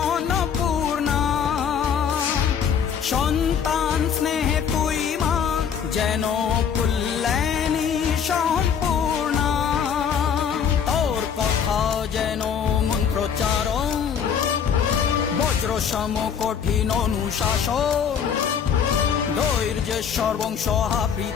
অন্নপূর্ণা। সন্তান স্নেহে তুই মা যেন কল্যাণী সম্পূর্ণা। তোর কথা যেন মন্ত্রোচ্চারণ, বজ্র সম কঠিন অনুশাসন। ধৈর্যেশ্বর বংশ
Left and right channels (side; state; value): right; quieter; 7.5 dB